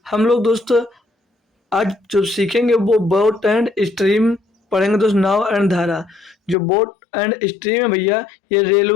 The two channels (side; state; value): right; drops out; at 6.6 s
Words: हम लोग आज जो सीखेंगे वो बोट एंड स्ट्रीम पढ़ेंगे दोस्त। नाव एंड धारा। जो बोट एंड स्ट्रीम है भैया, ये